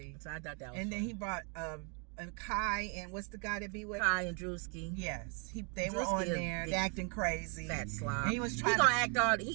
So I thought that was And funny. then he brought Kai and what's the guy that be with? Kai and Drewski. Yes. They were on there. They acting crazy. Fat slob. And he was trying he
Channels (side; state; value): left; quieter; 37.0 dB